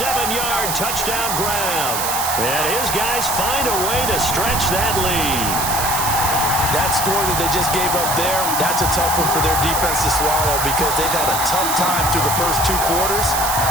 touchdown grab. And his guys find a way to stretch that lead. That score that they just gave up there, that's a tough one for their defense to swallow because they've had a tough time through the first 2 quarters.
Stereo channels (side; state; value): right; noise; hiss, 2 dB below the sound